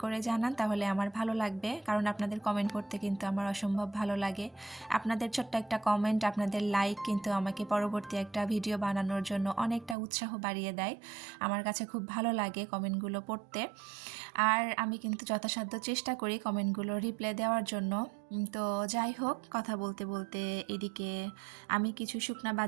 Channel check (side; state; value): left; drops out; at 10.0 s